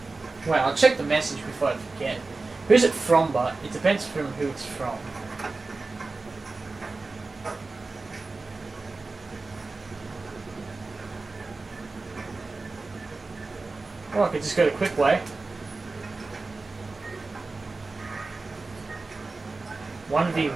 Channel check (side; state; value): left; quieter; 3.6 dB